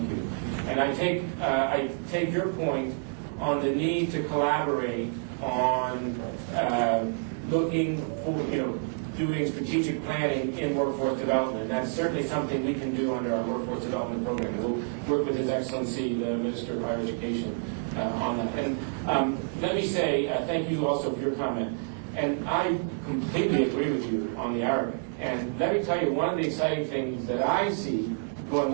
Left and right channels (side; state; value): left; silent; digital silence